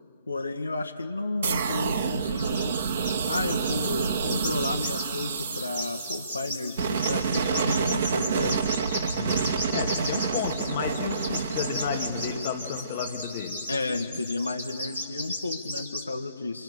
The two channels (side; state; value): both; inverted; correlation -0.63